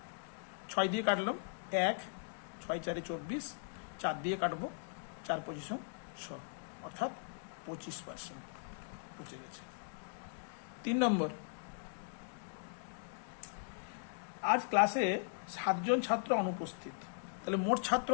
6 দিয়ে কাটলাম 1, 6 4 24, 4 দিয়ে কাটবো 4 25 100, অর্থাৎ 25% পচে গেছে। 3 নম্বর, আজ ক্লাসে 7 জন ছাত্র অনুপস্থিত। তাহলে মোট ছাত্র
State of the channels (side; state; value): right; silent; digital silence